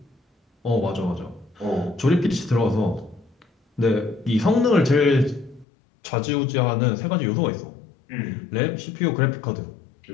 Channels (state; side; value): drops out; right; at 5.7 s